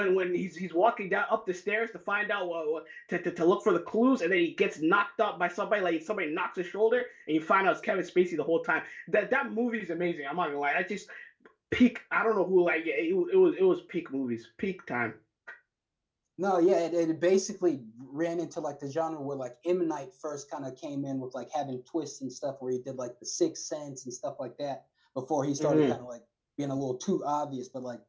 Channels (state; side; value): identical; both; correlation 1.00